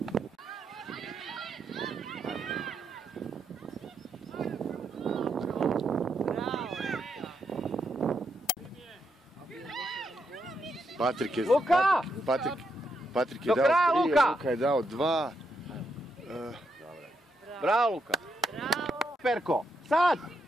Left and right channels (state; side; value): normal; both; correlation 0.80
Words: Patrik je... Luka! Patrik je dao 3, Luka je dao 2. Bravo, Luka! Bravo! Perko! Sad!